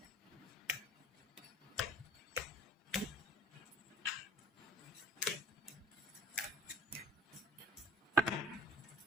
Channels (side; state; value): both; normal; correlation 0.53